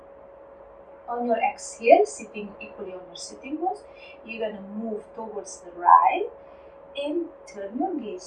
On your exhale, sitting equally on your sitting bones, you're going to move towards the right and turn your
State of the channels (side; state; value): both; identical; correlation 1.00